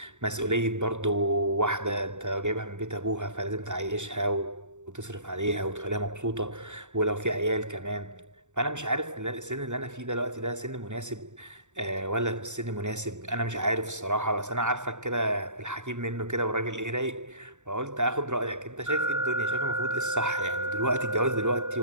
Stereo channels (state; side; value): late; left; 0.84 ms